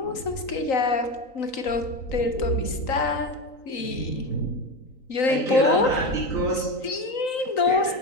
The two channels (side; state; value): right; late; 3.9 ms